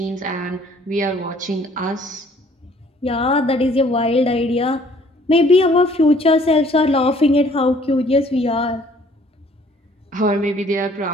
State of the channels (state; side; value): normal; both; correlation 0.58